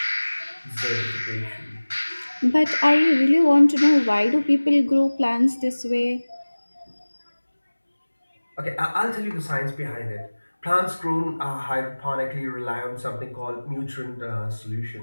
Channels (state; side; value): inverted; both; correlation -1.00